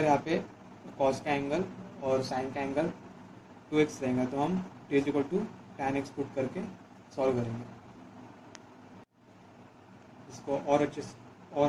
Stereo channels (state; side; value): identical; both; correlation 1.00